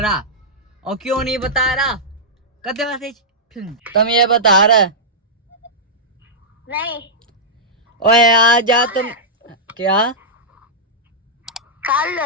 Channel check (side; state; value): both; normal; correlation -0.10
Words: और क्यों नहीं बता रहा। करते मैसेज, तुम ये बता रहा नहीं, ओए आ जा तुम। क्या